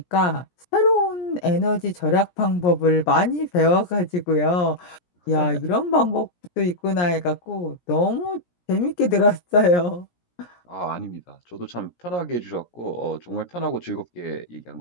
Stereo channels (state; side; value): late; right; 17 ms